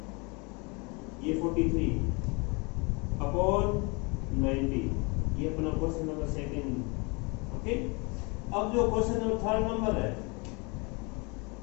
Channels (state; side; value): quieter; right; 29.7 dB